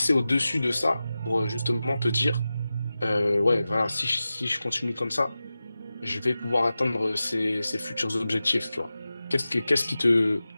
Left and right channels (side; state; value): both; inverted; correlation -0.95